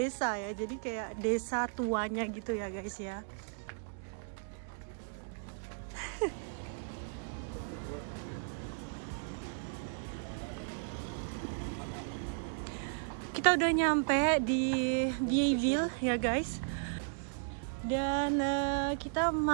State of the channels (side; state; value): left; silent; digital silence